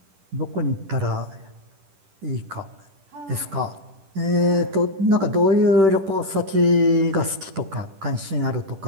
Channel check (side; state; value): left; late; 10 ms